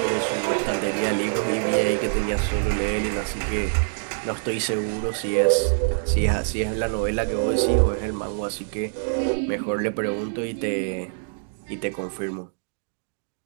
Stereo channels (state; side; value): silent; left; digital silence